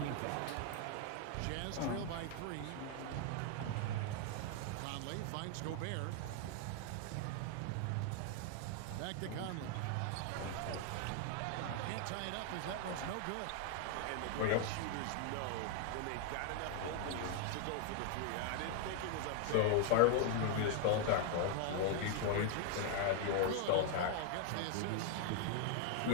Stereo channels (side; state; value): both; different; correlation 0.00